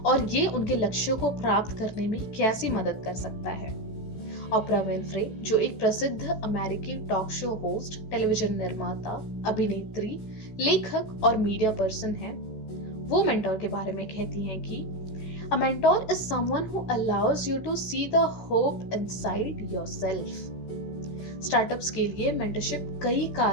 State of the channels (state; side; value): late; right; 16 ms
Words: और ये उनके लक्ष्यों को प्राप्त करने में कैसी मदद कर सकता है। ओपरा विनफ्रे, जो एक प्रसिद्ध अमेरिकी टॉक शो होस्ट, टेलीविजन निर्माता, अभिनेत्री, लेखक और मीडिया पर्सन है, वो मेंटोर के बारे में कहती हैं कि A mentor is someone who allows you to see the hope inside yourself. Startups के लिए मेंटरशिप कई